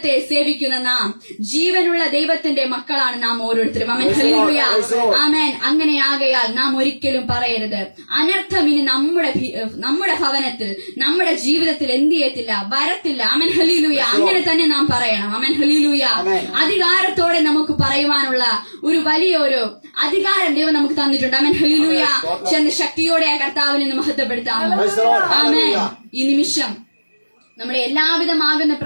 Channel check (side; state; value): both; inverted; correlation -1.00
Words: സേവിക്കുന്ന നാം, ജീവനുള്ള ദൈവത്തിന്റെ മക്കളാണ് നാം ഓരോരുത്തരും. ആമേൻ. ഹല്ലേലൂയ. ആമേൻ. അങ്ങനെയാകയാൽ നാം ഒരിക്കലും പറയരുത് അനർത്ഥം ഇനി നമ്മുടെ ഭവനത്തിൽ, നമ്മുടെ ജീവിതത്തിൽ എന്ത് ചെയ്യത്തില്ല, വരത്തില്ല. ആമേൻ. ഹല്ലേലൂയ. അങ്ങനെ തന്നെ നാം പറയണം. ആമേൻ. ഹല്ലേലൂയ. അധികാരത്തോടെ നമുക്ക് പറയുവാനുള്ള ഒരു വലിയൊരു അധികാരം ദൈവം നമുക്ക് തന്നിട്ടുണ്ട്. ആമേൻ. ഹല്ലേലൂയ. ചെന്ന് ശക്തിയോടെ ആ കർത്താവിനെ മഹത്വപ്പെടുത്താം. ആമേൻ. ഈ നിമിഷം നമ്മുടെ എല്ലാവിധമാകുന്ന